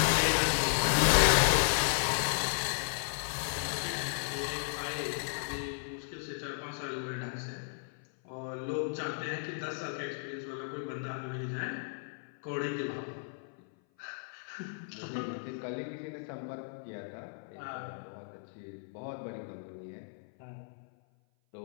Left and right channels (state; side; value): silent; right; 55 dB below the other